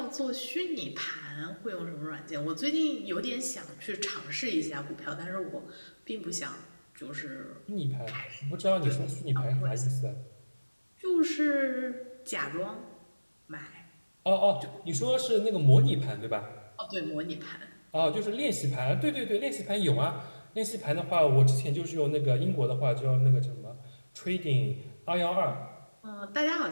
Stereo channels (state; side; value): inverted; both; correlation -1.00